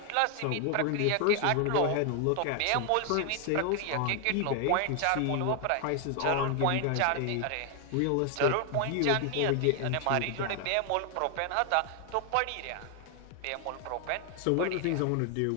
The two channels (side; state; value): both; different; correlation 0.00